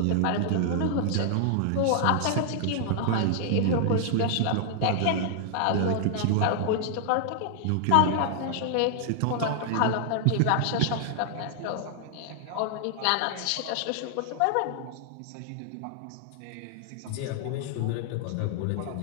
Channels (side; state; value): both; different; correlation -0.01